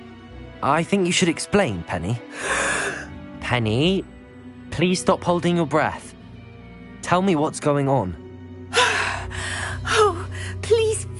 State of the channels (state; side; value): identical; both; correlation 1.00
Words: I think you should explain, Penny. Penny, please stop holding your breath. Tell me what's going on. Oh, please